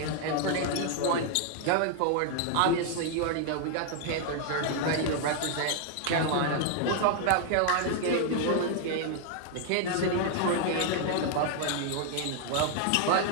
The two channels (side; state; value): both; different; correlation 0.00